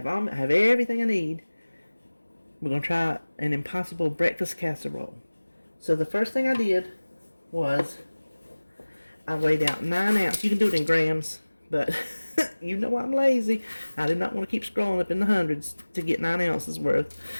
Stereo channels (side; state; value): both; inverted; correlation -1.00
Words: everything I need. We're going to try an Impossible breakfast casserole. So the first thing I did was I weighed out 9 ounces. You can do it in grams, but you know I'm lazy. I did not want to keep scrolling up in the hundreds to get 9 ounces